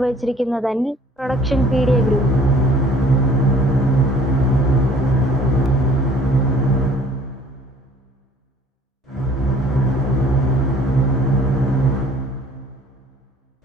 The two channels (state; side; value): normal; both; correlation 0.53